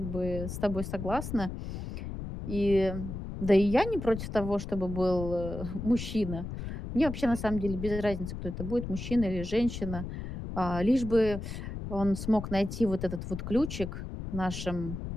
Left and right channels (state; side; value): noise; left; rumble, 7 dB below the sound